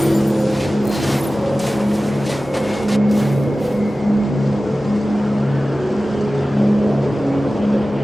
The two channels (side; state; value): both; normal; correlation 0.96